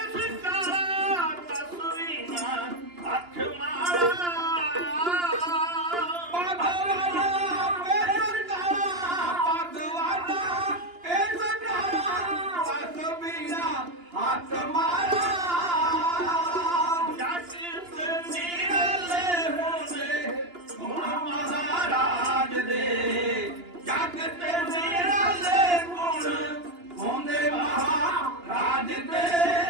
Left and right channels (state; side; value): late; left; 2.9 ms